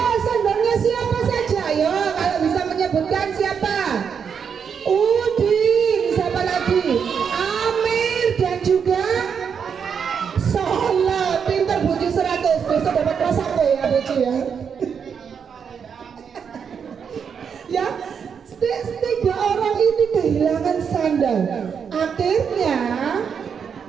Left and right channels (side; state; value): left; quieter; 6.9 dB